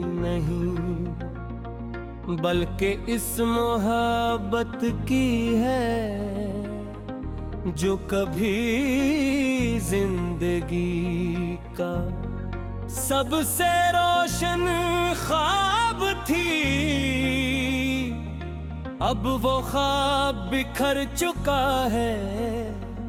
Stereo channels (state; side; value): identical; both; correlation 1.00